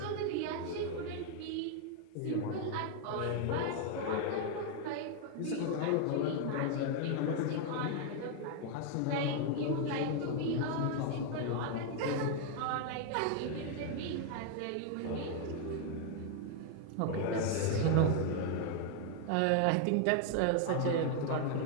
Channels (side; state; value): both; different; correlation 0.01